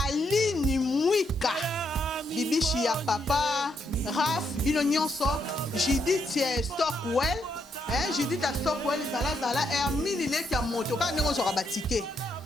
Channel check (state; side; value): normal; both; correlation 0.77